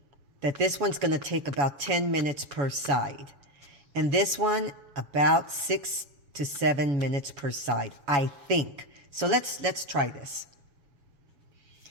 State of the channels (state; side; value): late; left; 7.1 ms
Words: that this one's going to take about 10 minutes per side, and this one about 6 to 7 minutes per side, I think. So let's try this.